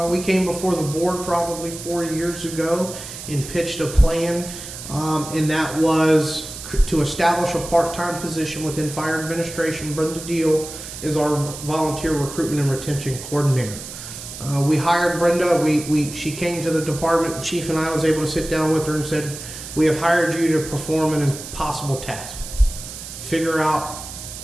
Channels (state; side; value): noise; right; hiss, 11 dB below the sound